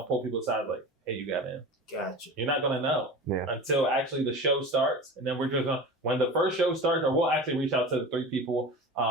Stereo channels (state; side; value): normal; both; correlation 0.32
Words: pull people aside like, "Hey, you got in." Gotcha. You're not gonna know until actually the show starts, and then we're just gonna, when the first show starts, or we'll actually reach out to the 3 people